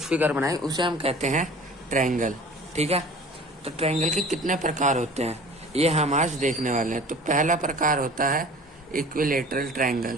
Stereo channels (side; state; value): both; normal; correlation 0.44